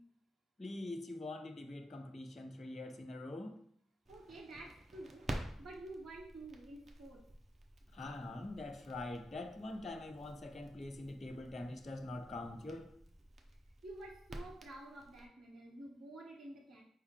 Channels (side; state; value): both; normal; correlation 0.85